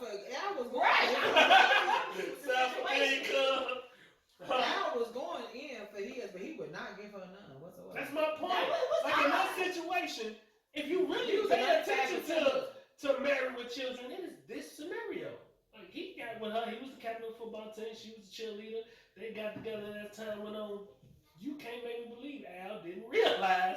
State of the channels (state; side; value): identical; both; correlation 1.00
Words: Right. Self-income. Al was going in for his, but he would not give her none whatsoever. That's my point. That was Like in that odd. situation, if you He really was pay another attention type to Married with Children, it is this scenario. Like he got with her, he was the captain of the football team, she was the cheerleader. They got together as time went on. You can't make me believe Al didn't